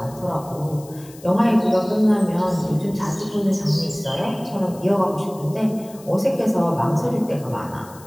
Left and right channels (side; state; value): left; noise; hiss, 22 dB below the sound